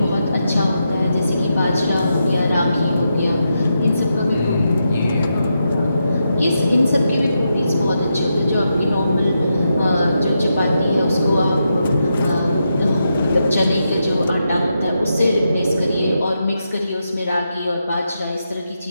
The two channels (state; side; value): inverted; both; correlation -0.85